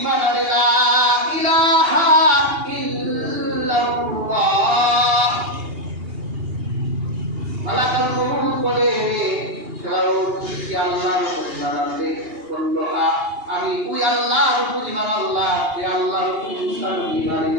আনে, লা ইলাহা ইল্লাল্লাহ। মালাকুল মউত বলে, ফেরাউন কি আল্লাহর প্রতি ঈমান আনবে? বলল, আমি ওই আল্লাহর প্রতি ঈমান আনলাম যে আল্লাহর প্রতি মুসা নবী ঈমান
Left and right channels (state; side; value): late; left; 2.8 ms